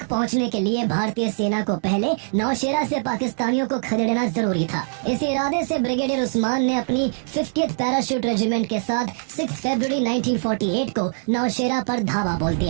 पहुंचने के लिए भारतीय सेना को पहले नौशेरा से पाकिस्तानियों को खदेड़ना जरूरी था। इस इरादे से ब्रिगेडियर उस्मान ने अपनी 50th पैराशूट रेजिमेंट के साथ 6 फरवरी 1948 को नौशेरा पर धावा बोल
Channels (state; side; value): silent; left; 64 dB below the other